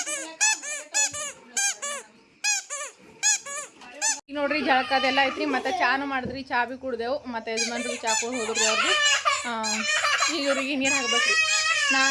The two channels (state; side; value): identical; both; correlation 1.00